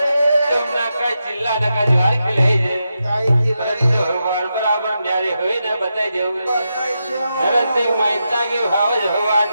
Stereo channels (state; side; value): inverted; both; correlation -0.87